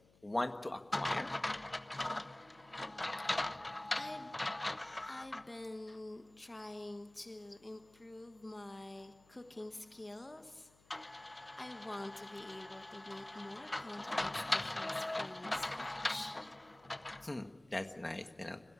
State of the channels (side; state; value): left; noise; hum, 28 dB below the sound